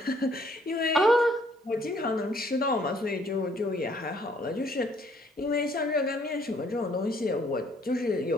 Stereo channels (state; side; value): normal; both; correlation 0.64